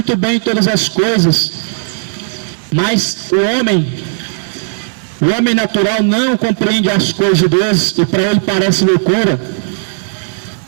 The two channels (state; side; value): silent; left; digital silence